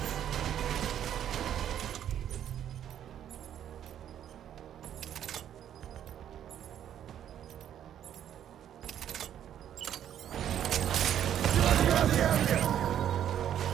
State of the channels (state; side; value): quieter; left; 10.2 dB